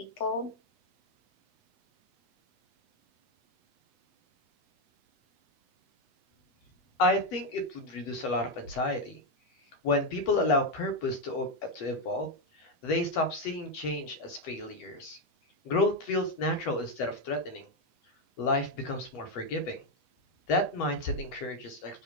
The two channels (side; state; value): right; late; 8.1 ms